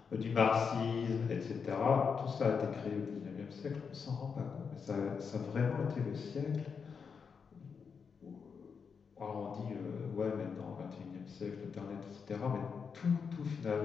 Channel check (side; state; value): right; quieter; 6.0 dB